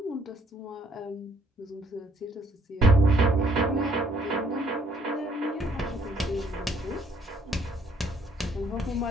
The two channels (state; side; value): normal; both; correlation 0.65